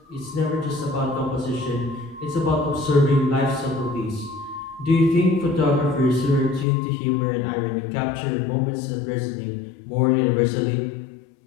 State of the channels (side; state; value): right; drops out; at 6.7 s